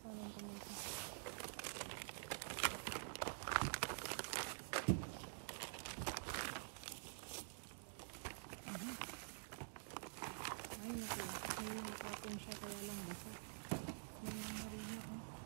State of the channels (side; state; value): left; silent; digital silence